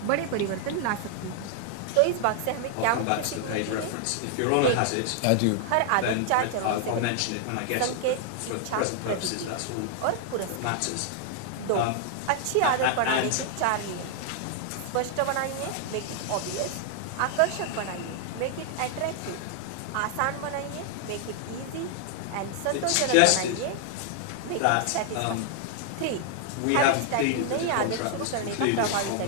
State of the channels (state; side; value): different; both; correlation 0.00